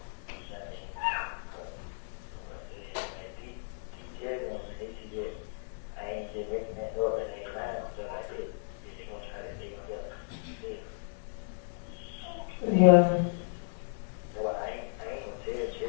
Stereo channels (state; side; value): silent; right; digital silence